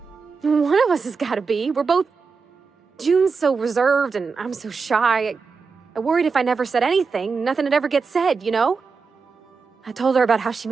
One of us has got to be. We're both... June's so reserved and I'm so shy. I worried if I never said anything, nothing would ever get said, you know? I told her about how she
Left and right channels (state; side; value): quieter; left; 5.0 dB